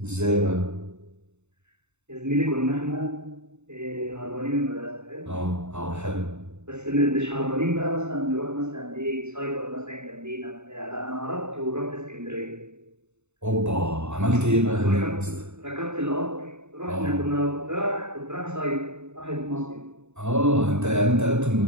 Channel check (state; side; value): late; left; 0.82 ms